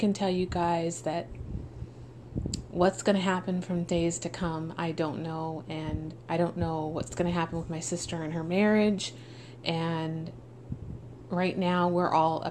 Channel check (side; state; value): both; identical; correlation 1.00